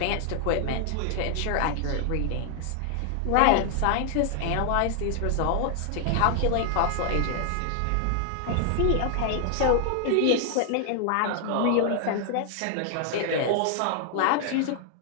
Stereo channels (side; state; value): both; different; correlation 0.00